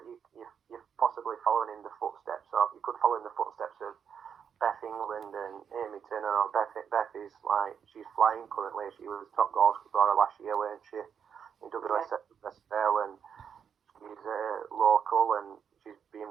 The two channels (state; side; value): quieter; left; 7.5 dB